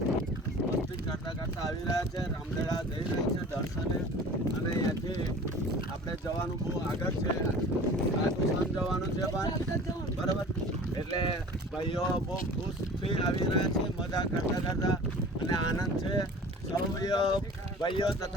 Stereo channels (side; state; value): both; normal; correlation 0.42